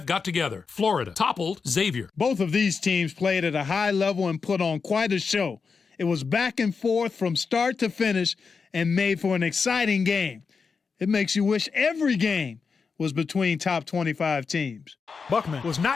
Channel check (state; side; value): quieter; right; 5.2 dB